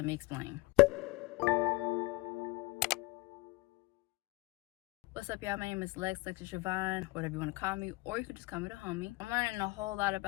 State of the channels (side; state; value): right; quieter; 22.7 dB